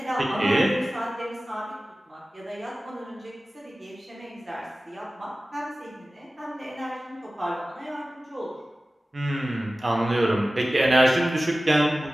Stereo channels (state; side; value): normal; both; correlation 0.96